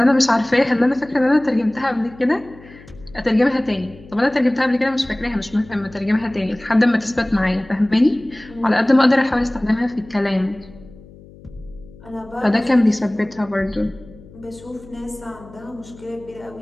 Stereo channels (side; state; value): left; noise; hum, 21 dB below the sound